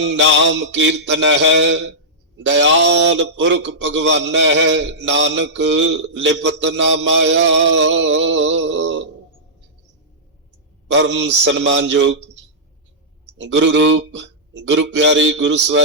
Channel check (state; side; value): normal; both; correlation -0.13